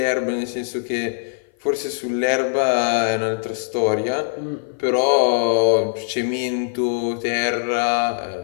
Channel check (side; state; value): right; silent; 56 dB below the other